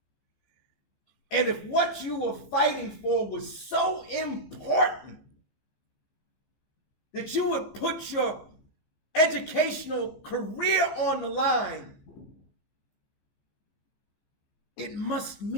And if what you were fighting for was so important that you would put your educational career on the line, it must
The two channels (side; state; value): right; late; 15 ms